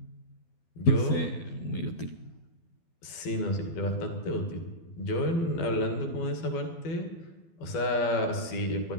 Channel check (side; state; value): right; late; 12 ms